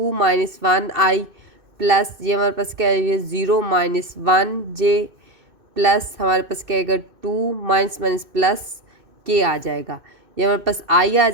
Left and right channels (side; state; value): left; late; 2.6 ms